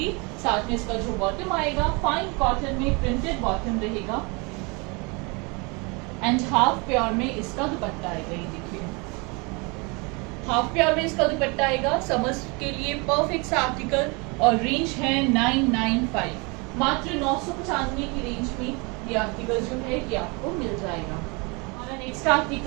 साथ में इसका जो बॉटम आएगा फाइन कॉटन में प्रिंटेड बॉटम रहेगा एंड हाफ प्योर में इसका दुपट्टा आएगा। ये देखिए हाफ प्योर में इसका दुपट्टा आएगा। समर्स के लिए परफेक्ट सा आर्टिकल और रेंज है 995, मात्र 995 की रेंज में ये आर्टिकल जो है ये आपको मिल जाएगा। हमारा नेक्स्ट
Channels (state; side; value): quieter; left; 29.5 dB